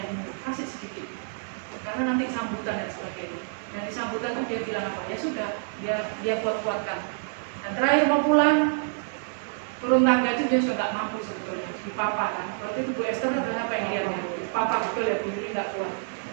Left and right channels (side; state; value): left; silent; digital silence